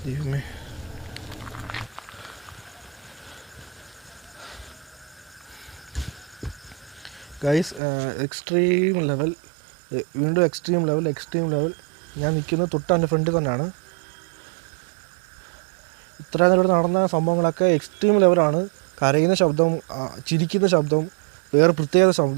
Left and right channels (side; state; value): left; drops out; at 7.8 s